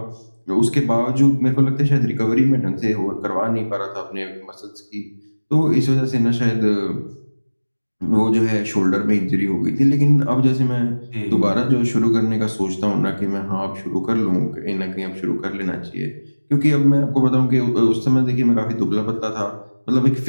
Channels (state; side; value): inverted; both; correlation -1.00